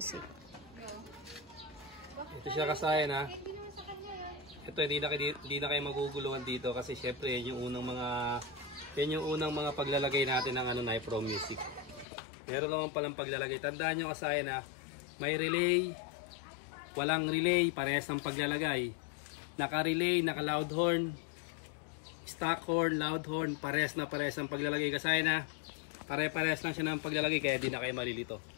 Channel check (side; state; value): right; drops out; at 12.1 s